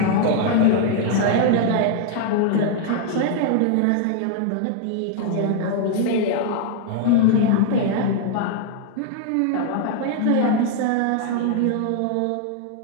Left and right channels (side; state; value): both; different; correlation 0.00